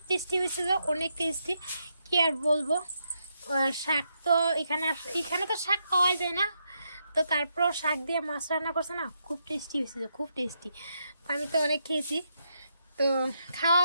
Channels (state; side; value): inverted; both; correlation -0.80